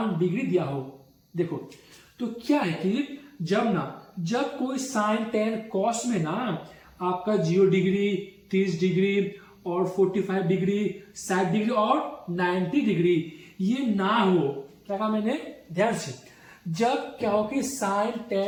डिग्री दिया हो, देखो तो क्या है कि जब कोई साइन टेन कॉस में ना आपका 0 डिग्री 30 डिग्री और 45 डिग्री 60 डिग्री और 90 डिग्री ये ना हो, क्या कहा मैंने, ध्यान से, जब क्या हो कि साइन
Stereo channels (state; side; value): identical; both; correlation 1.00